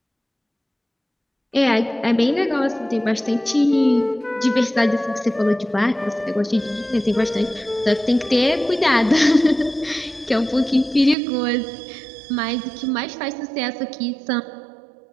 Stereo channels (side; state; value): left; drops out; at 11.2 s